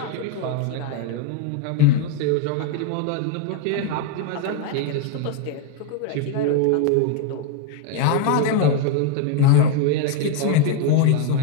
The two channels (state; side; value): different; both; correlation 0.01